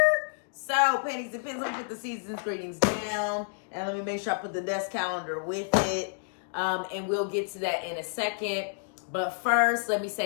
So, Pennies and Pens, let me put the Season's Greetings down, and let me make sure I put the desk calendar with it, and we'll get to that in a second. But first, let me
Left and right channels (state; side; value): silent; right; digital silence